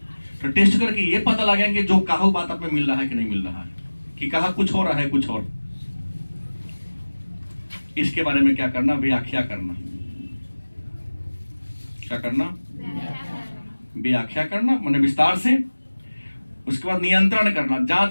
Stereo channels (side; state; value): both; inverted; correlation -1.00